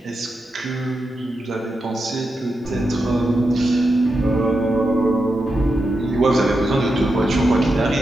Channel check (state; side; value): normal; both; correlation 0.87